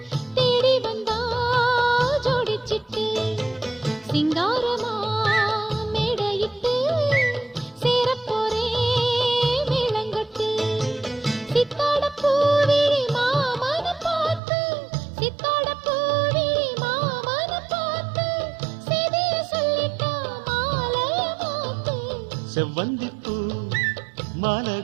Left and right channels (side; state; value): left; drops out; at 14.4 s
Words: தேடி வந்தா ஜோடிச்சிட்டு சிங்காரமா மேடையிட்டு சேரப்போரே மேளங்கட்டு. சித்தாட பூவிழி மாமன பார்த்து சித்தாட பூவிழி மாமன பார்த்து செய்திய சொல்லிட்டா மாலைய மாத்து. செவ்வந்திப்பூ மாலை